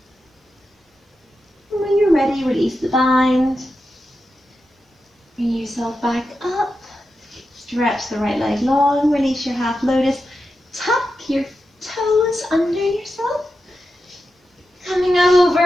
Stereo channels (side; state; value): both; normal; correlation 0.89